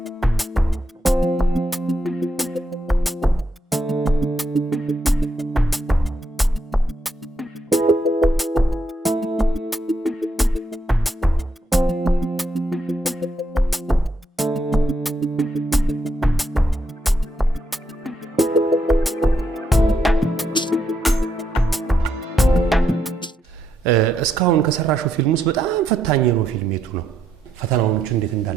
እስካሁን ከሰራሽው ፊልም ውስጥ በጣም ፈታኝ ነው ፊልም የቱ ነው ፈተናዎቹ እንዴት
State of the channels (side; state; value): both; normal; correlation 0.78